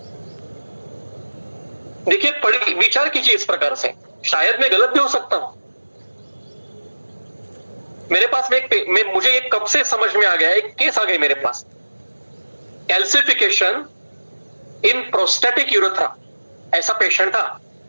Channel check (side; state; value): both; inverted; correlation -1.00